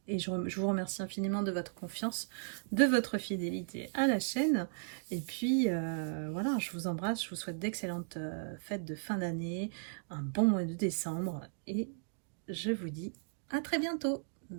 Et je vous remercie infiniment de votre confiance, de votre fidélité à la chaîne. Et puis, voilà, je vous embrasse. Je vous souhaite d'excellentes fêtes de fin d'année, un bon mois de décembre. Et je vous dis à très bientôt.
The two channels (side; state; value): left; silent; digital silence